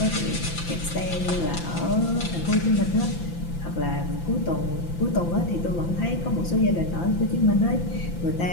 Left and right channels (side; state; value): right; late; 5.9 ms